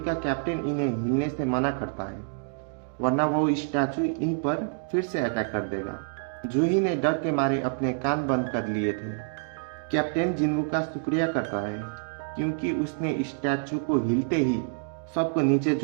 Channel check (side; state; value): left; silent; digital silence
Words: कैप्टन इन्हें हिलने से मना करता है, वरना वो स्टैचू इन पर फिर से अटैक कर देगा। जूही ने डर के मारे अपने कान बंद कर लिए थे। कैप्टन जिन्वू का शुक्रिया करता है क्योंकि उसने स्टैचू को हिलते ही सबको नीचे